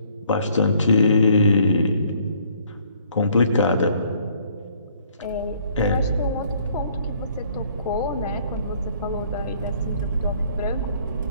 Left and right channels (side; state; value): both; inverted; correlation -0.62